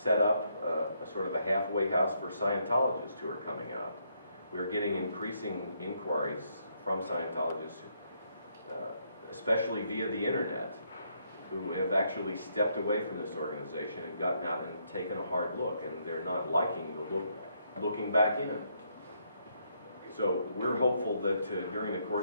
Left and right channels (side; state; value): both; inverted; correlation -0.74